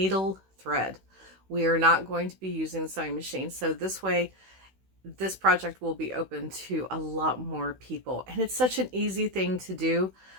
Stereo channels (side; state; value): left; late; 16 ms